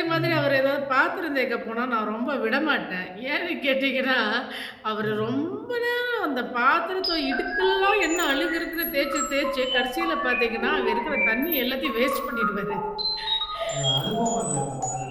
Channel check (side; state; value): both; identical; correlation 1.00